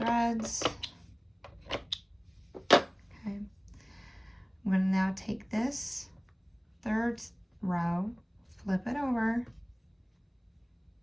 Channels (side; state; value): both; identical; correlation 1.00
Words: Okay. I'm going to now take this 3rd row, flip it over,